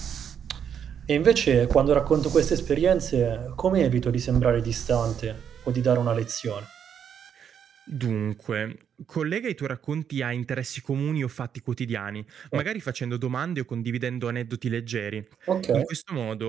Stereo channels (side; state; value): left; quieter; 8.2 dB